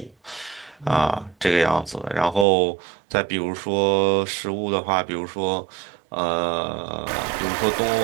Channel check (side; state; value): left; drops out; at 2.5 s